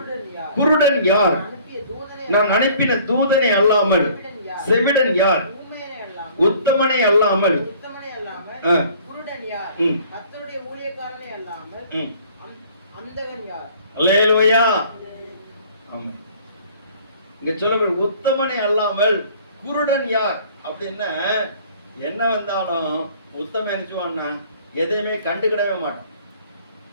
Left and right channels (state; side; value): inverted; both; correlation -0.53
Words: குருடன் யார்? நான் அனுப்பின தூதனை அல்லாமல் செவிடன் யார்? உத்தமனை அல்லாமல் குருடன் யார்? கர்த்தருடைய ஊழியக்காரனை அல்லாமல் அந்தகன் யார்? அல்லேலூயா. ஆமென். இங்க சொல்ல உத்தமனை அல்லாமல் குருடன் யார் அப்படின்னா என்ன வந்தாலும் உத்தமன் நினைச்சுவான்னா எதையுமே கண்டுக்கிடவே மாட்டான்.